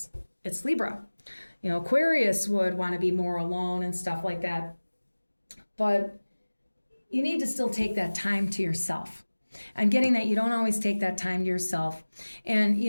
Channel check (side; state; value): both; inverted; correlation -1.00